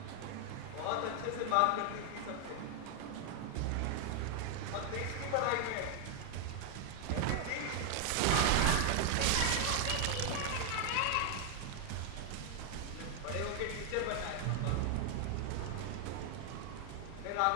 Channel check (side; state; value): both; different; correlation 0.00